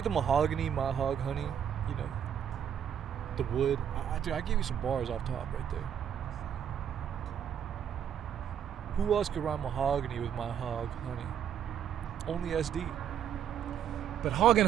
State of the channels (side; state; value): left; quieter; 8.9 dB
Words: the mahogany, my hog, honey? You know, the wood. Dude, I gave you some bars off top right there. Who else could rhyme mahogany with my hog, honey? Only SD. But hog